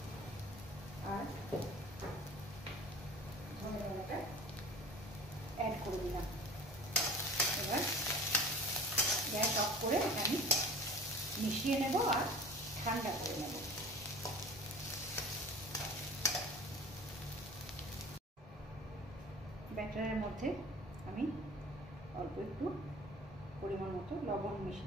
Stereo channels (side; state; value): both; normal; correlation 0.41